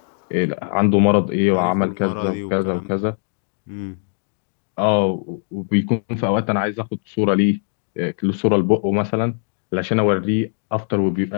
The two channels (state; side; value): silent; right; digital silence